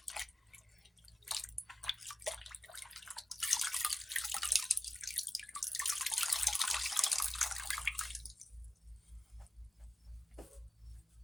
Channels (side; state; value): both; normal; correlation 0.94